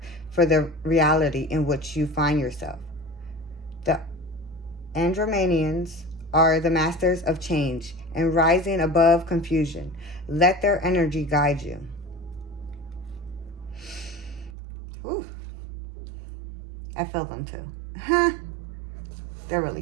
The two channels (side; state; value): left; drops out; at 14.6 s